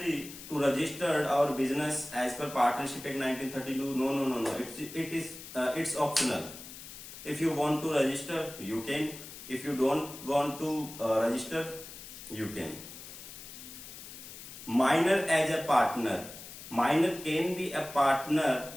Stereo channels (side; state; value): left; noise; hiss, 13 dB below the sound